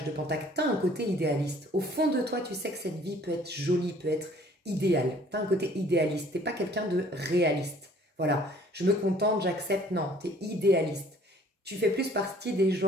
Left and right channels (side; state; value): both; normal; correlation 0.56